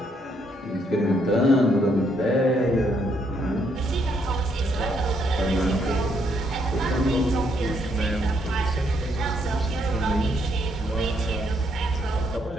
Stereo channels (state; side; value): normal; both; correlation 0.72